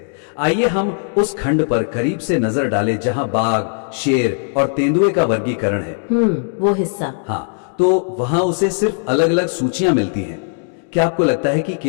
आइए हम उस खंड पर करीब से नजर डालें जहां बाघ, शेर और तेंदुए का वर्गीकरण है। वो हिस्सा। हाँ, तो वहां उसे सिर्फ अलग अलग सूचियां मिलती हैं। क्या आपको लगता है कि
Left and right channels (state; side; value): silent; right; 58 dB below the other